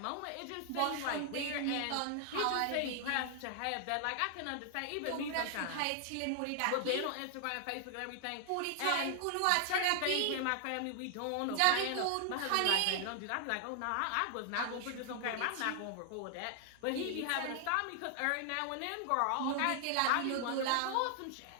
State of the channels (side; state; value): both; different; correlation 0.00